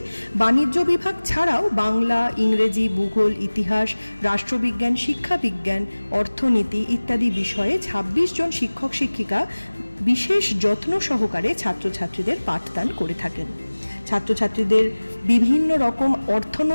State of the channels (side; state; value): both; inverted; correlation -1.00